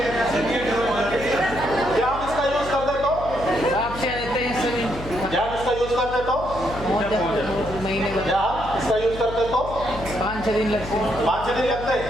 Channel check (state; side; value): noise; left; hum, 11 dB below the sound